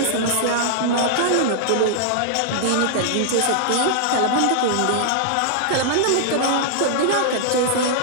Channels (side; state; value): both; different; correlation -0.01